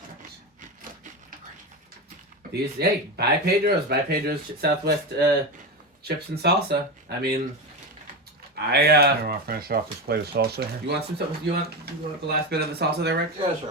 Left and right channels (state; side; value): normal; both; correlation 0.18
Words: These buy Pedro's Southwest chips and salsa. I mean, I want to finish off this plate of salsa here. you want some? You want the last bit of the salsa there, Rick? Yeah,